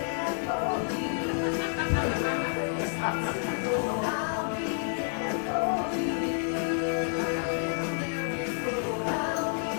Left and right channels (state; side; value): silent; right; digital silence